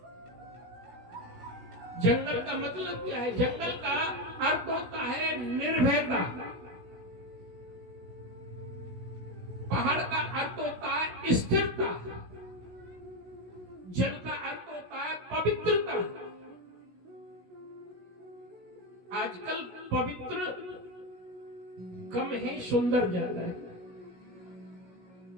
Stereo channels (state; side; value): late; left; 16 ms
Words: जंगल का मतलब क्या है, जंगल का अर्थ होता है निर्भयता, पहाड़ का अर्थ होता है स्थिरता, जल का अर्थ होता है पवित्रता। आजकल पवित्र कम है, सुंदर ज्यादा है।